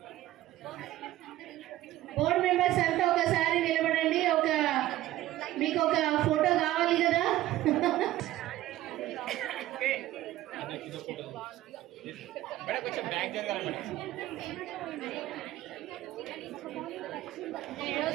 బోర్డు మెంబర్స్ అంతా ఒకసారి నిలబడండి. మీకు ఒక ఫోటో కావాలి కదా. కొంచెం బ్యాక్ జరగాలి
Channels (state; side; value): quieter; left; 15.1 dB